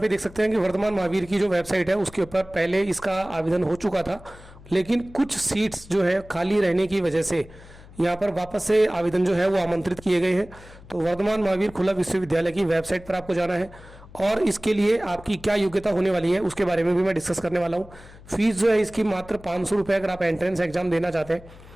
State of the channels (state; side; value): noise; left; hum, 20 dB below the sound